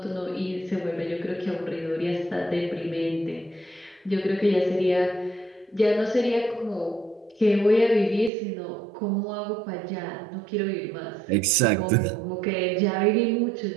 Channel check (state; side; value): drops out; left; at 8.3 s